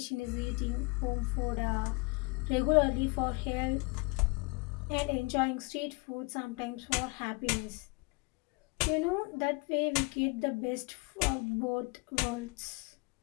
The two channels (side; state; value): right; quieter; 28.4 dB